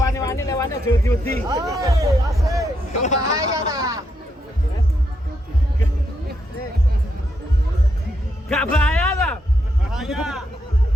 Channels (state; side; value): normal; both; correlation 0.80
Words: Lewatnya jauh-jauh. Bahaya tak? Gak bahaya lah.